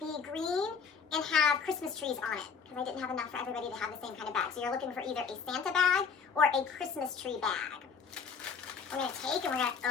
green and have Christmas trees on it, because I didn't have enough for everybody to have the same kind of bag. So you're looking for either a Santa bag or a Christmas tree bag. We're going to take and we're going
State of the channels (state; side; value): quieter; right; 5.9 dB